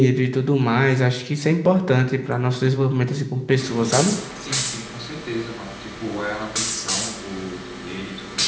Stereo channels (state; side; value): identical; both; correlation 1.00